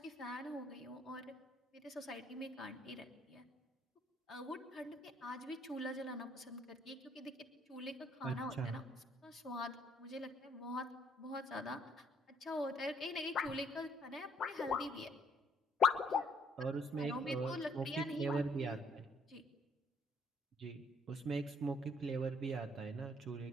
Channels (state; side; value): normal; both; correlation 0.65